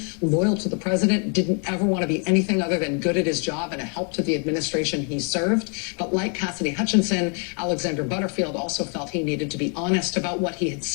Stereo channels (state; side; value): quieter; right; 39.1 dB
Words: loyal to the president, didn't ever want to be anything other than good at his job and a help to the administration he served. But like Cassidy Hutchinson, Alexander Butterfield also felt he needed to be honest about what he had